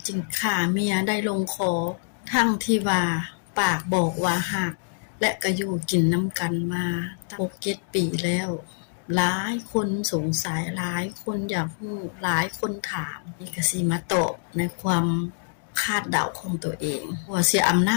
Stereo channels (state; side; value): silent; right; digital silence